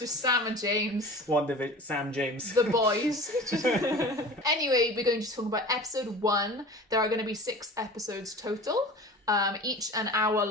Sam and James. Sam James. The boys. Anyway, we're going to talk about episode 1. There are going to be 6 episodes total, each an hour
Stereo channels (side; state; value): both; normal; correlation 0.38